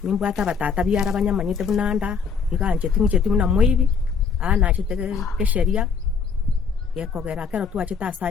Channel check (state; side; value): quieter; right; 5.8 dB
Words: nimbwate abatata biara banyamanyete buna nda iga ncheti buna moibi nachete gesheria gekogera kero twachete ase